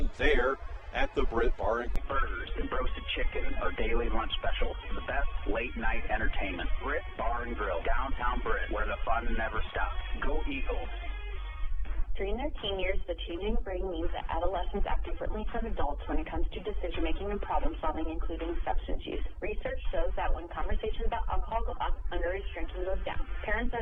there at the Britt Bar and Grill. Burgers and roasted chicken are daily lunch specials. The best late-night entertainment. Britt Bar and Grill, downtown Britt, where the fun never stops. Go Eagles. During their teen years, the changing brain means that adolescents act differently from adults when it comes to decision-making and problem-solving, including substance use. Research shows that when conversations about alcohol go up, underage drinking goes down. Parents are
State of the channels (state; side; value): identical; both; correlation 1.00